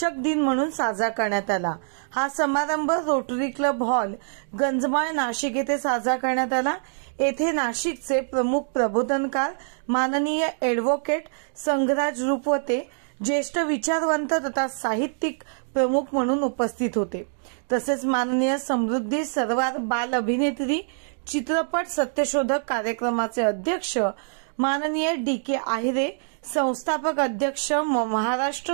दिन म्हणून साजरा करण्यात आला। हा समारंभ रोटरी क्लब हॉल गंजमाळ नाशिक येथे साजरा करण्यात आला। येथे नाशिकचे प्रमुख प्रबोधनकार माननीय ॲडव्होकेट संघराज रूपवते ज्येष्ठ विचारवंत तथा साहित्यिक प्रमुख म्हणून उपस्थित होते। तसेच माननीय समृद्धी सरवार बाल अभिनेत्री चित्रपट सत्यशोधक कार्यक्रमाचे अध्यक्ष माननीय DK आहिरे, संस्थापक अध्यक्ष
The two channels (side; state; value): left; silent; digital silence